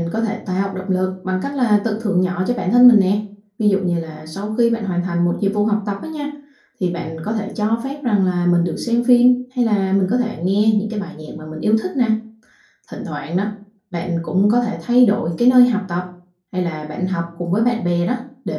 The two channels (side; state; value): both; identical; correlation 1.00